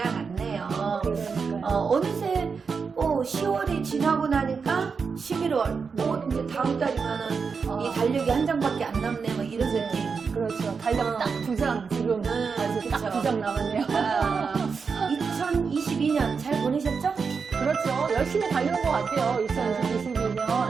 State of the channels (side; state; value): left; quieter; 5.4 dB